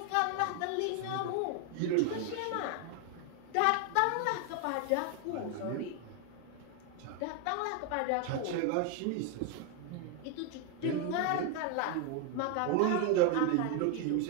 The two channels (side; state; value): both; different; correlation 0.01